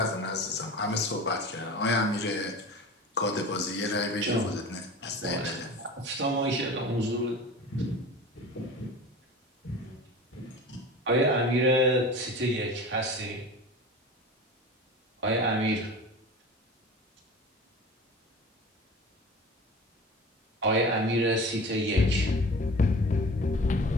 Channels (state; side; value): normal; both; correlation 0.36